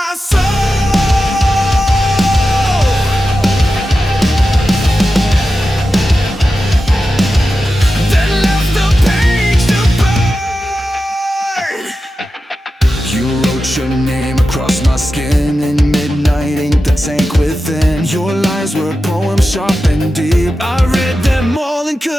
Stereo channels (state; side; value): normal; both; correlation 0.92